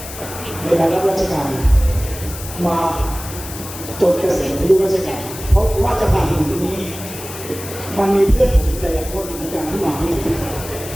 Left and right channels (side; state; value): left; noise; hiss, 12 dB below the sound